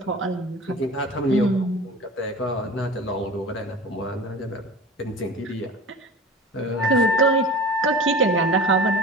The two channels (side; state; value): both; normal; correlation 0.37